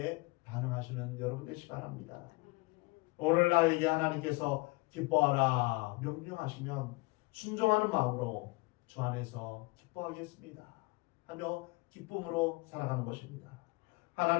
반응하시는 여러분 되시기 바랍니다. 오늘 나에게 하나님께서 기뻐하라 명령하시면 순종하는 마음으로 주 안에서 기뻐하겠습니다 하며 기쁨으로 살아가는 것입니다.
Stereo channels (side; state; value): right; quieter; 25.5 dB